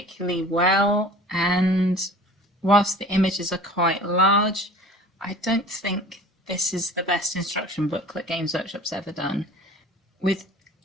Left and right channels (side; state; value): both; normal; correlation 0.44